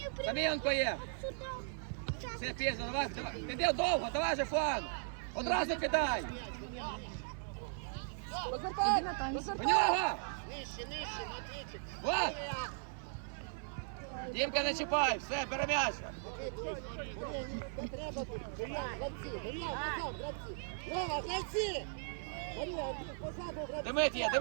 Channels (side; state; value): left; silent; 53 dB below the other